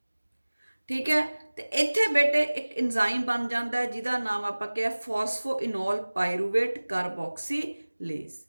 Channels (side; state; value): both; inverted; correlation -1.00